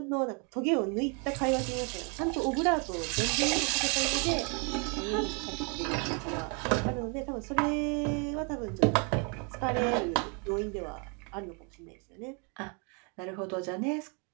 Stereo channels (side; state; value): left; quieter; 35.3 dB